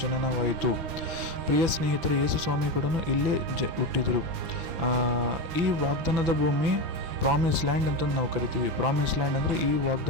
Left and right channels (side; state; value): left; late; 6.0 ms